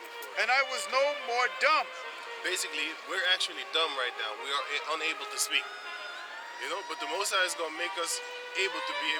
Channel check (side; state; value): both; identical; correlation 1.00